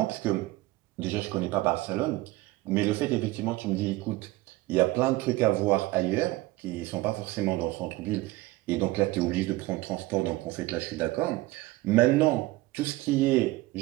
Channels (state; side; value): quieter; left; 19.3 dB